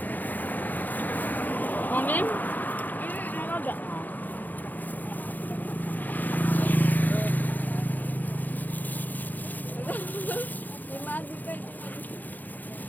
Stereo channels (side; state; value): right; late; 0.084 ms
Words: Kunin? Ano ba? May magi ka.